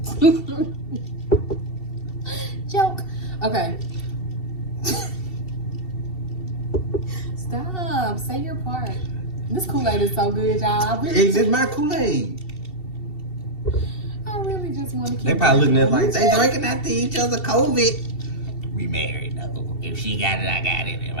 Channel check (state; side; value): late; right; 2.7 ms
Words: Joke. Okay. Stop. Say your part. This Kool-Aid is so good, y'all. It's just my Kool-Aid. I really just want to keep. They probably looking at it like they drinking after each other COVID. We married though. If she got it, I got it. If